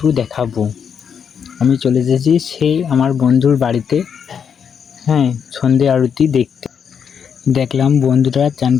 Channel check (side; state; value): right; quieter; 7.3 dB